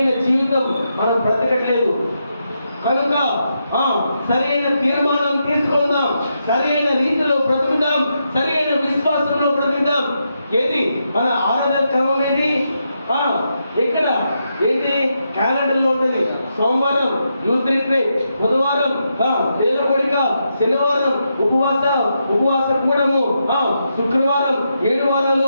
జీవితం మనం బ్రతకట్లేదు. కనుక సరైన తీర్మానం తీసుకుందాం, సరైన రీతిలో బ్రతుకుదాం, సరైన విశ్వాసంలో బ్రతుకుదాం. ఏది మన ఆరాధన క్రమం ఏది? ఇక్కడ ఏంటి? క్యాలెండర్లో ఉంటుంది. సోమవారం యూత్ రిట్రీట్, బుధవారం వేల కోడిక, శనివారం ఉపవాస కూడము, శుక్రవారం 7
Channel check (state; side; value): inverted; both; correlation -0.83